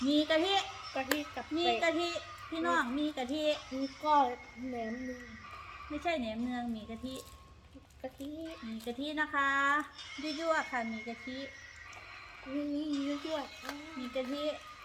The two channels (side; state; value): both; identical; correlation 1.00